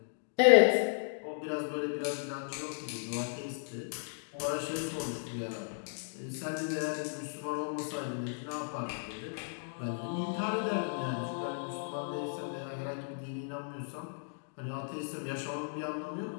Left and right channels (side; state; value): right; silent; digital silence